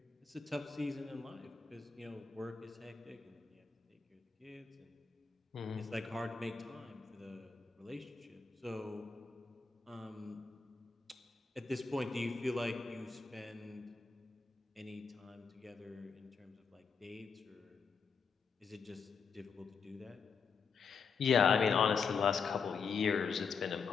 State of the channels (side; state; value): right; quieter; 5.5 dB